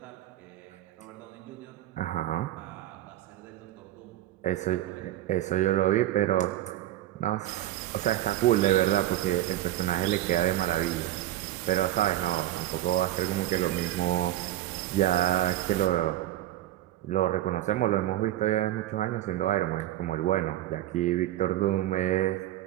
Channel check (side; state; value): left; quieter; 14.0 dB